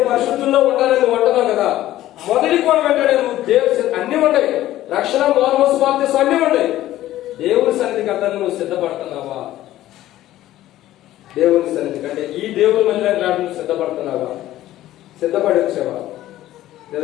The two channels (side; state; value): right; quieter; 14.3 dB